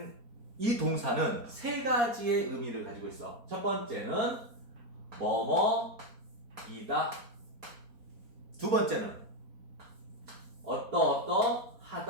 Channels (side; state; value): left; late; 4.3 ms